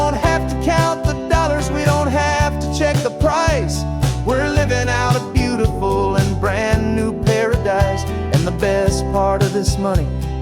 have to count the dollars, we don't have to check the price. We're living out a beautiful and brand new paradise. And the best part of this money,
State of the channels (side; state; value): both; identical; correlation 1.00